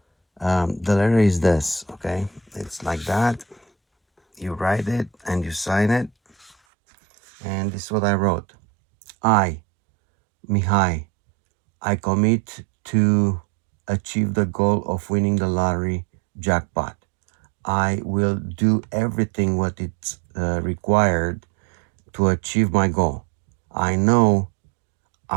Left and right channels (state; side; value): drops out; left; at 6.6 s